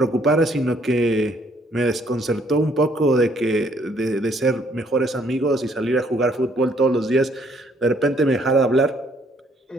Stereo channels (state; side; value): normal; both; correlation 0.66